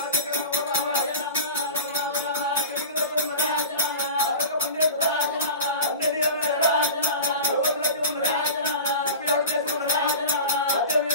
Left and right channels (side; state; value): both; inverted; correlation -0.33